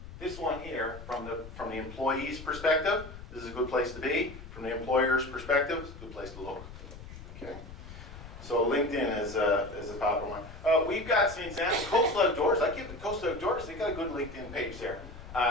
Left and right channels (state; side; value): noise; left; rumble, 14 dB below the sound